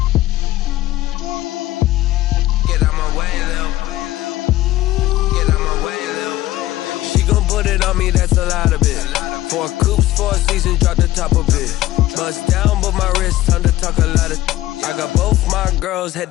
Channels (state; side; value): quieter; right; 15.5 dB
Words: Get out my way, Lil. Get out my way, Lil. She gon' put it on me, that's a lot of it. 4 coops, 4 seasons, drop the top a bit. Bust down, but my wrist, time to talk a lot of. I got both my girls